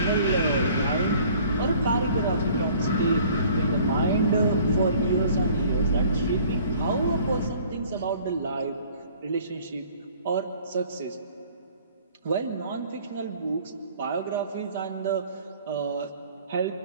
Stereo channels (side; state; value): both; inverted; correlation -0.53